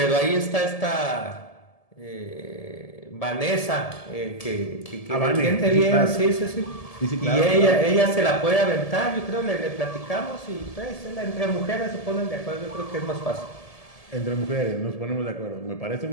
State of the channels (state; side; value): late; right; 1.7 ms